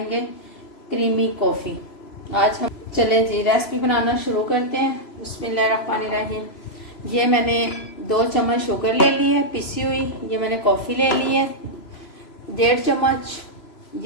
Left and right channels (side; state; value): right; late; 3.0 ms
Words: क्रीमी कॉफ़ी। आज हम चलें जी रेसिपी बनाना शुरू करते हैं। बिस्मिल्लाहिर्रहमानिर्रहीम। ये मैंने 2 चम्मच शुगर ले ली है पिसी हुई। ये मैंने कॉफ़ी ले ली है 1.5 चम्मच।